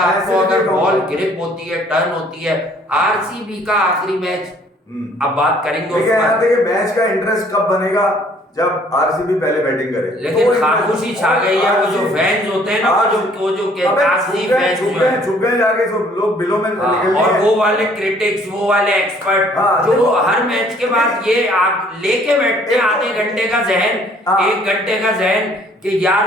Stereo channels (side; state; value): both; normal; correlation 0.59